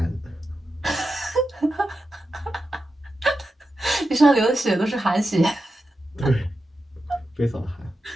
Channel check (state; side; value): normal; both; correlation 0.90